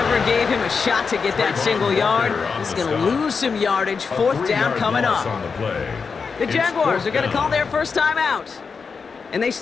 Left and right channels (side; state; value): right; quieter; 5.3 dB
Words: gave him a shot to get that single yard. He's going to lose some yardage. 4th down coming up. The Jaguars are going to call their first time out. And they